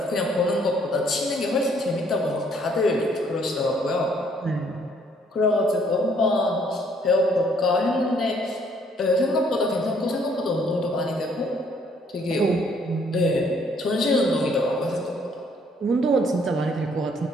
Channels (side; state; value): both; normal; correlation 0.65